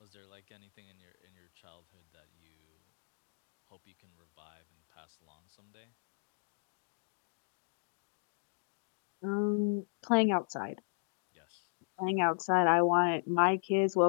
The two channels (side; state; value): right; silent; digital silence